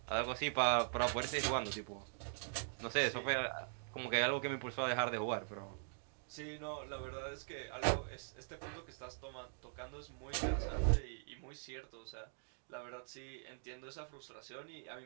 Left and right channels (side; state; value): left; silent; digital silence